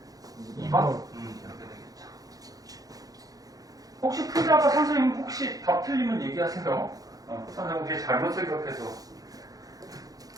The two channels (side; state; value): left; late; 0.18 ms